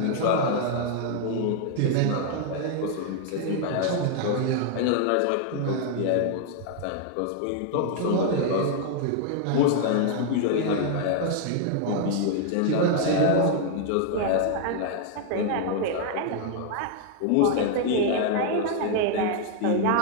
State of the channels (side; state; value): both; different; correlation 0.00